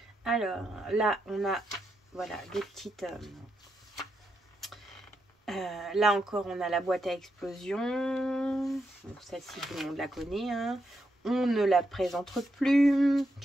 Alors, là, on a, voilà, des petites... là encore, on a la boîte à explosion. Bon, celle-ci, tout le monde la connaît. Hein. On ne la présente plus.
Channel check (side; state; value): both; normal; correlation 0.82